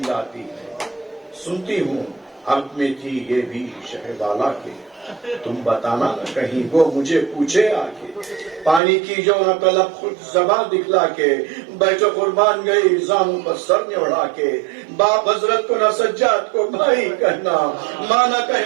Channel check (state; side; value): drops out; left; at 8.8 s